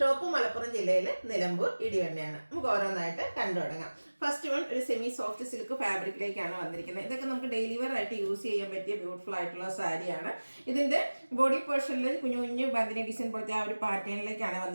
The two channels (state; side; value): inverted; both; correlation -1.00